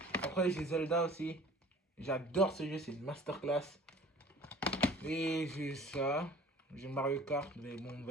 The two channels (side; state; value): both; normal; correlation 0.47